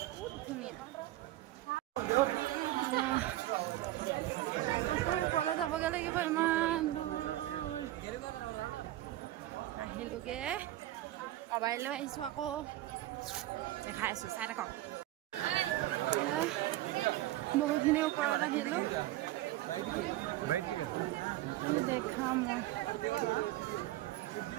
ধুনীয়া আকৌ ওপৰলৈ যাবগৈ লাগিব ইমান দূৰ আহিলোগে মোবাইল লৈ আহিছোঁ আকৌ দেখাই আছোঁ চাই থাকক বহুতখিনি ওপৰত আহিলোঁ দেখাম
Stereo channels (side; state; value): left; quieter; 15.8 dB